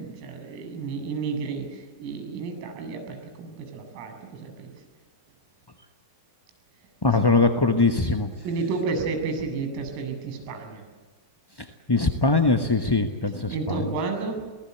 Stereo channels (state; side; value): late; right; 1.1 ms